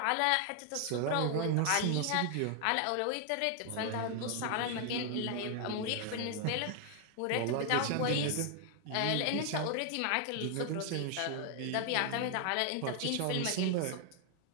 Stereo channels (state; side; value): different; both; correlation 0.00